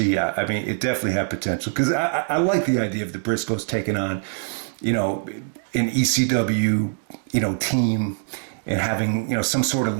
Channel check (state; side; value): silent; left; digital silence